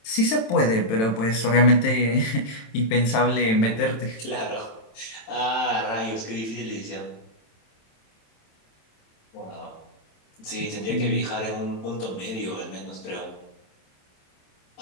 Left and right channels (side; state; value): right; late; 27 ms